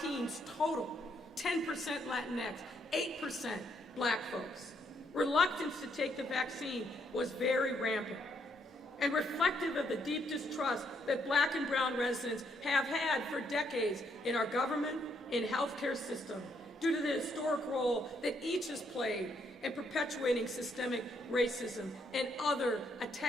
total, 10% Latinx, 8% black folks. Reluctance to take the vaccine was very rampant and reflective of the deep distrust that black and brown residents have had for decades in our government, in healthcare system, due to the historic role that each has played in perpetuating systemic racism and other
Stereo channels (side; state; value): both; normal; correlation 0.73